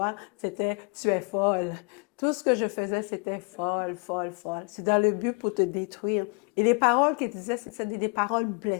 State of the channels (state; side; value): quieter; right; 34.2 dB